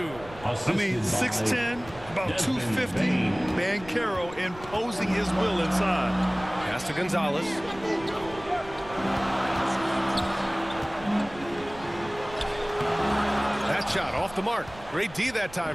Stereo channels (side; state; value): right; noise; rumble, 18 dB below the sound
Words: I mean, 6'10", about 250. Banchero imposing his will inside. Pass to Gonzalez. That shot off the mark. Great D that